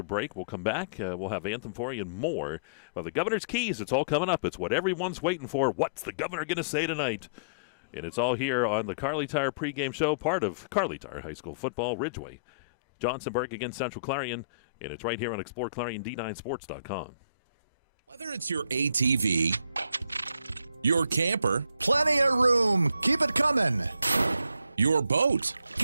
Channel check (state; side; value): inverted; both; correlation -0.56